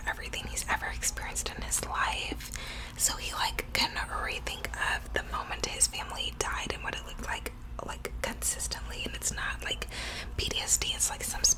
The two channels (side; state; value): both; identical; correlation 1.00